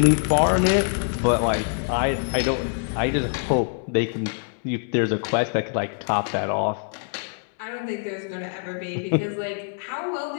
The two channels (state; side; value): silent; right; digital silence